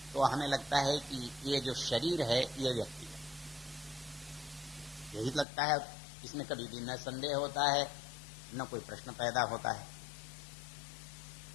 तो हमें लगता है कि ये जो शरीर है ये व्यक्ति है, यही लगता है। इसमें कभी भी न संदेह होता है न कोई प्रश्न पैदा होता है।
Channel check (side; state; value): right; drops out; at 5.5 s